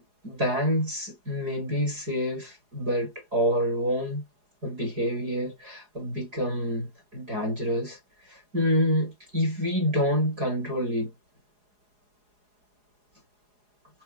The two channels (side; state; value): left; late; 4.8 ms